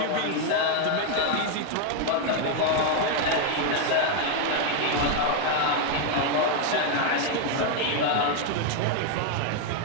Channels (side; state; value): both; different; correlation 0.01